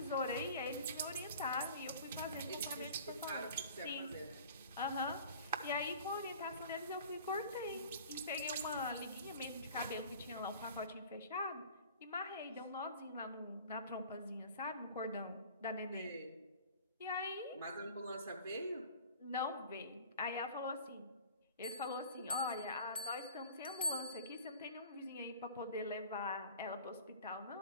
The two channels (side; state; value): both; inverted; correlation -0.44